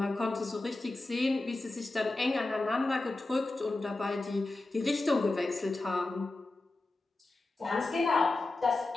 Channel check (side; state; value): right; quieter; 3.0 dB